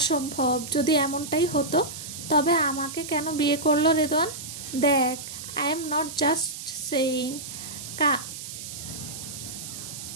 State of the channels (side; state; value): right; noise; hiss, 10 dB below the sound